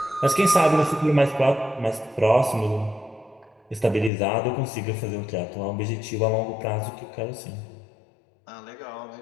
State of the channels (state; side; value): drops out; right; at 4.1 s